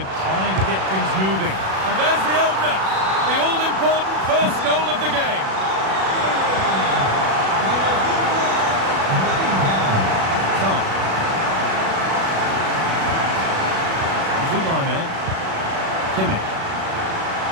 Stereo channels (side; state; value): left; late; 37 ms